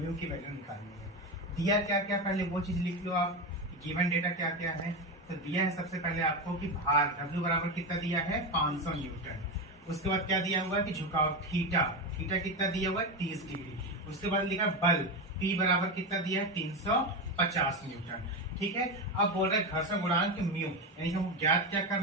म्यू की वैल्यू निकालनी है। दिया क्या क्या, पहले वो चीज लिख लो आप, गिवन डेटा क्या क्या है। तो दिया है सबसे पहले आपको कि भार W बराबर कितना दिया है 500 न्यूटन। उसके बाद क्या दिया हुआ है कि झुकाव थीटा कितना दिया हुआ है 30 डिग्री। उसके बाद लिखा बल P बराबर कितना दिया है 350 न्यूटन। ठीक है, अब बोल रहे घर्षण गुणांक म्यू, यानी कि हमको ज्ञात क्या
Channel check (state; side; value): normal; both; correlation 0.16